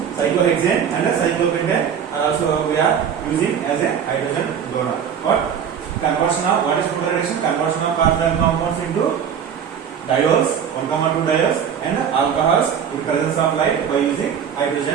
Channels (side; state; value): left; quieter; 7.9 dB